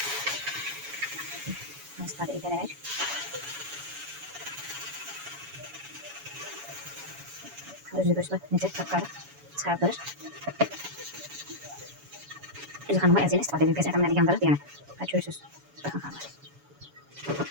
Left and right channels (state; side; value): late; left; 7.1 ms